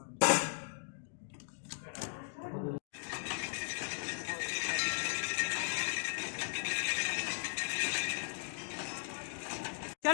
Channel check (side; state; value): right; silent; digital silence